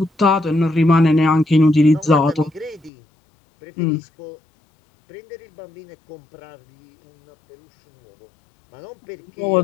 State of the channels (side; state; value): right; drops out; at 2.9 s